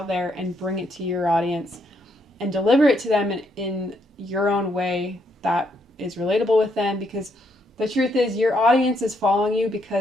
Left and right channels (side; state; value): both; normal; correlation 0.74